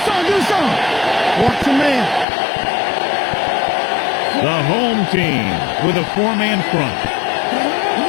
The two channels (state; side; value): drops out; right; at 2.2 s